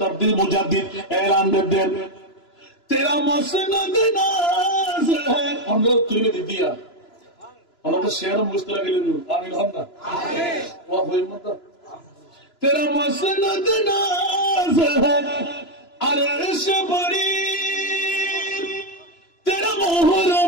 মুজাদ্দিদ এলান দেন तेरा मसनद नाज है हम लोग तुझे दे दिया हम तो शेर मुस्तला के लिए आमीन होना आमीन वाह होई मत तेरा मसनद नाज है अर्श बड़ी तेरा मोहर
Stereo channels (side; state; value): right; late; 3.0 ms